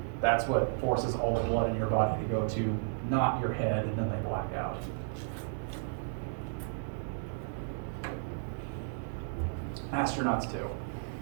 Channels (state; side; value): silent; left; digital silence